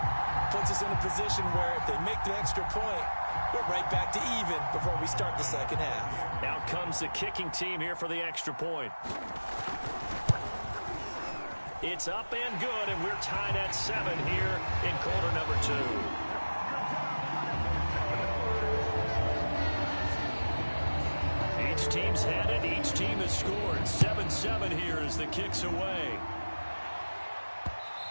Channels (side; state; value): both; inverted; correlation -1.00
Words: puts us in a position where if they make the extra point, we're right back to even before we start the second half. Out comes the kicking team here for the extra point. It's up and good, and we're tied at 7 here in quarter number 2. Each team's had it. Each team has scored. 7-7 here as the kick's away.